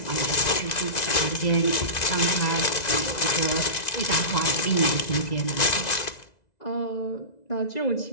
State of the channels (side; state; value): right; late; 2.0 ms